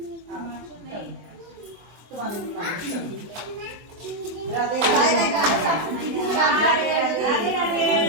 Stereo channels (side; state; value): left; late; 24 ms